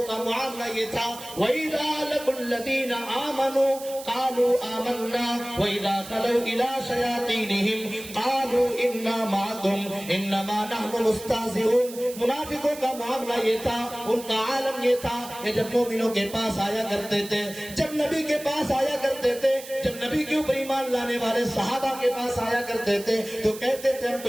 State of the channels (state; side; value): noise; right; hiss, 14 dB below the sound